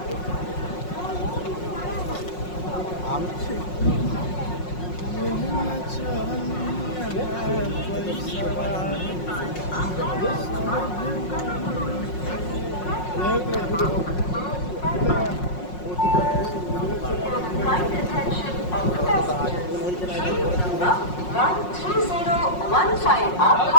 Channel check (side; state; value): right; late; 5.5 ms